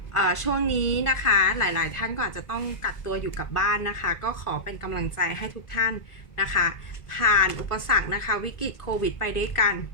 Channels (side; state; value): right; late; 1.4 ms